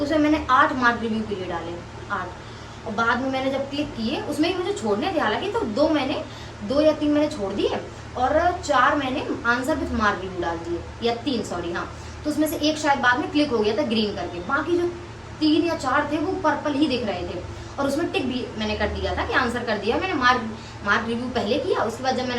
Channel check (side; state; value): both; identical; correlation 1.00